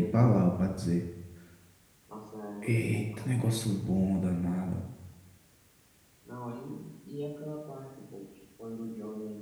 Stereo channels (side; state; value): both; identical; correlation 1.00